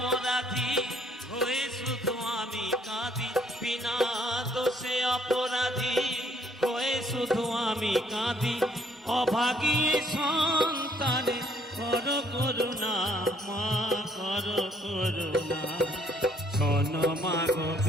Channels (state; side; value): normal; both; correlation 0.65